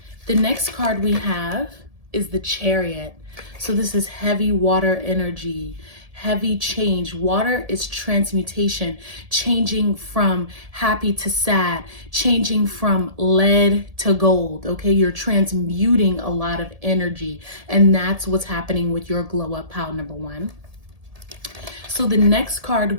The next card we have is the Chariot. So this is heavy water energy, heavy change. Water is transmutation, changing from happy to sad, changing from lead to gold, okay? You're transmuting a lot of energy, and that's what's happening with your glow up pile number one. So the next card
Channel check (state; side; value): late; left; 1.7 ms